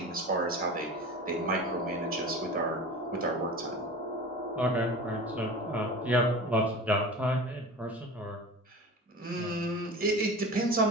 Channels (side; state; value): both; normal; correlation 0.34